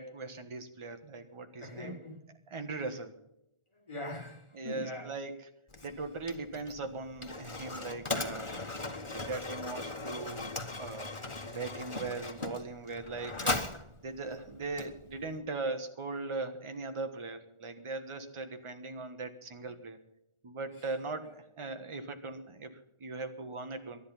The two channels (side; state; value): left; late; 1.4 ms